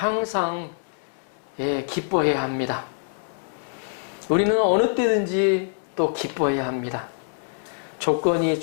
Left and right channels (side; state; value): right; silent; digital silence